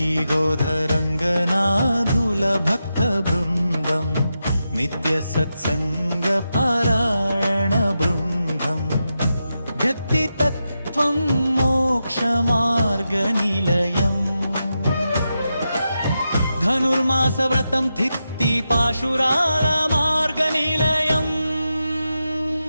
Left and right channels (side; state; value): both; inverted; correlation -0.88